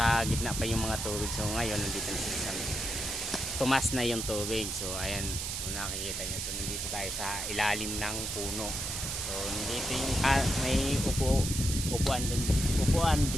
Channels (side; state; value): right; noise; hiss, 3 dB below the sound